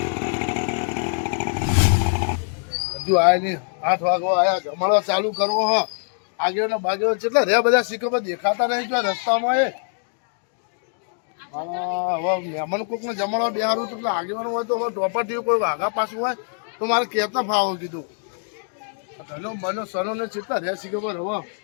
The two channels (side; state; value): right; silent; 63 dB below the other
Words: હજુ આયા નહીં 8 વાગવા આયા જમાડવા ચાલુ કરવો હ આગેવાના બાગેવાના કેટલા રે બધા સિક્કો દેખાતા નહીં જો રસ્તામાં એ હવે મહેમાન કોકને જમાડવા બેહારું તો આગેવાનું હોય તો હવે ટોપર કોઈ વાઘા પાછું હોય તો મારે કહેતા ફાવો કીધું ધનો બનો સનો ને કેટલા રે સિક્કો પર હવે